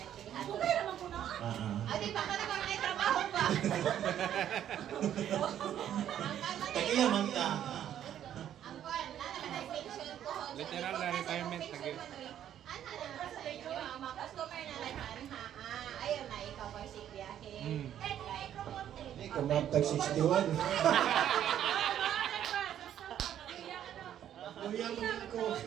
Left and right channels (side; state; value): left; quieter; 10.6 dB